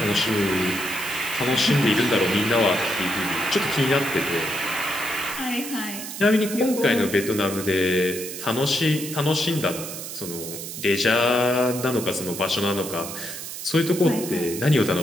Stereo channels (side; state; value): right; noise; hiss, 8 dB below the sound